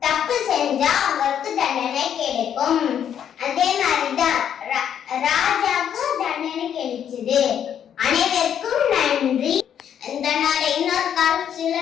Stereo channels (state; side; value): quieter; right; 9.1 dB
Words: தப்பு செஞ்சா அவங்களுக்கு தண்டனை கிடைக்கும். அதே மாதிரிதான் ராஜாவுக்கும் தண்டனை கிடைச்சது. அனைவருக்கும் நன்றி. இதனோட இன்னொரு கால்